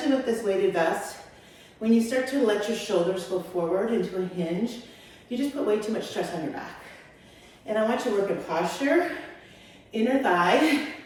with this weighted vest. When you start to let your shoulders go forward into a hinge, you just put way too much stress on your back. And I want you to work in posture, inner thigh,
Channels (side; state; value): both; identical; correlation 1.00